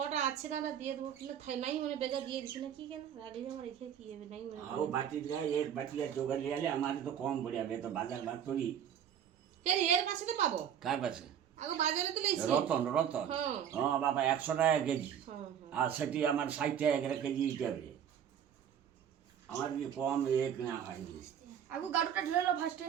আছে না দিয়ে দেবো কিন্তু থাই নাই মানে বেগা দিয়ে দিছি না কি কেন রাগে যাওয়া রেখে কি হবে নাই মানে आओ बाटी जाए एक बाटी या चोकर ले आले हमारे तो कम बढ़िया बे तो बाजार बात थोड़ी কেন এর পাশে তো পাবো कार पासे আগে বাজারে তো লেছি रतन হ্যাঁ हाँ बाबा 100 টাকা কেজি হ্যাঁ আর সেটি আমার 60 টাকা করে কেজি হিসাবে আমার কি কম এক না হয়নি আগু গাড়ুটা ঢেলে লো ফার্স্টে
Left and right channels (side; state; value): left; quieter; 9.0 dB